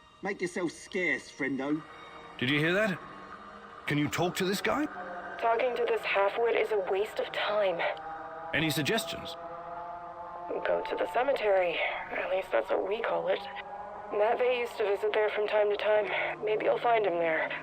Make yourself scarce, friendo. Did you hear that? Can you talk to this guy? Talking to this half-wit is a waste of time. Any suggestions? Go to the cemetery. At least that's what we call it. Matvey used to visit there from time to time. Maybe you'll find him there.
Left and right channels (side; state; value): both; identical; correlation 1.00